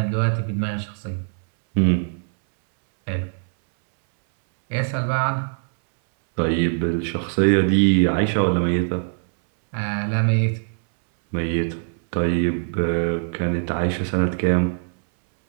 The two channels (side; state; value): left; silent; 64 dB below the other